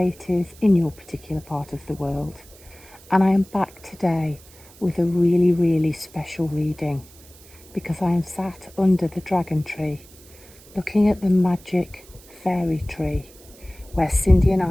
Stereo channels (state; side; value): noise; right; hiss, 23 dB below the sound